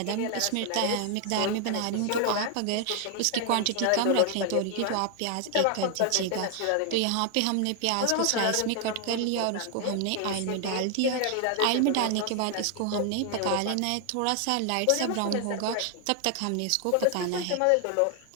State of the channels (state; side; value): different; both; correlation 0.00